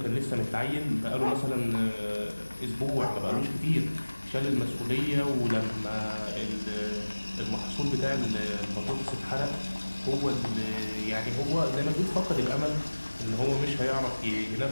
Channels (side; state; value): both; inverted; correlation -1.00